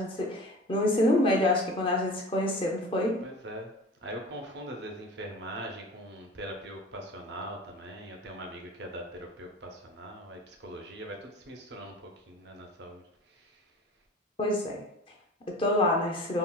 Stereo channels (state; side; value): normal; both; correlation 0.39